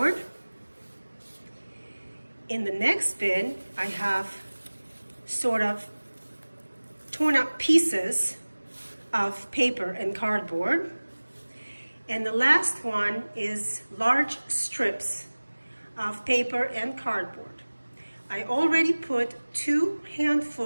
In the next bin I have sort of torn up pieces of paper and cardboard. And the last one is large strips of paper and cardboard. I already put 2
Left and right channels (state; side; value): inverted; both; correlation -1.00